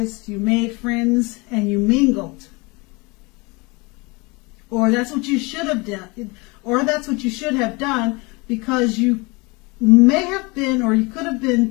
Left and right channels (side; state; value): right; quieter; 26.7 dB